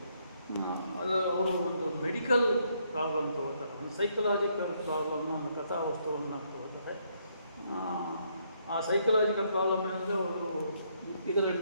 ಅದು ಅವರು ಒಂದು ಮೆಡಿಕಲ್ ಪ್ರಾಬ್ಲಮ್ ತಗೋತಾರೆ, ಒಂದು ಸೈಕಲಾಜಿಕಲ್ ಪ್ರಾಬ್ಲಮ್ನ ಒಂದು ಕಥಾವಸ್ತುವನ್ನು ತಗೋತಾರೆ. ಆ ಸೈಕಲಾಜಿಕಲ್ ಪ್ರಾಬ್ಲಮ್ ಏನಂದರೆ ಅವರು ಇದರ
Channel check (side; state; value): both; inverted; correlation -0.72